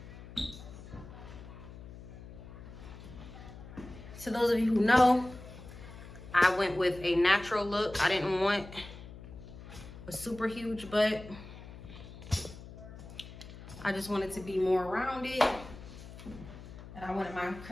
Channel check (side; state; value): left; noise; hum, 15 dB below the sound